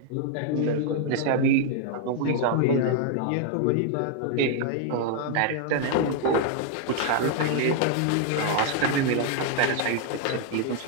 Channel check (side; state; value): both; different; correlation 0.00